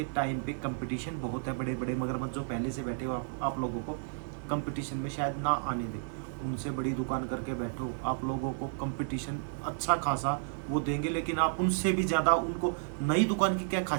टाइम पे कंपटीशन बहुत है। बड़े बड़े मगरमच्छ जो पहले से बैठे हो आप लोगों को कंपटीशन में शायद ना आने दे, उनसे बड़ी दुकान करके बैठो, आप लोगों को कंपटीशन अच्छा खासा वो देंगे। लेकिन आप उनसे भी ज़्यादा, उनको नई दुकान की क्या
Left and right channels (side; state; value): left; silent; digital silence